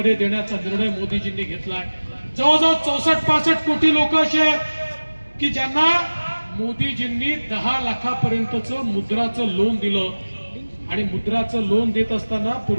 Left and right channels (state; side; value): inverted; both; correlation -1.00